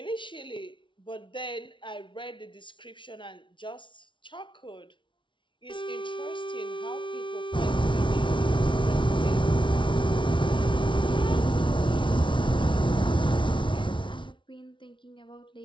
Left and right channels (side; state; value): right; late; 0.24 ms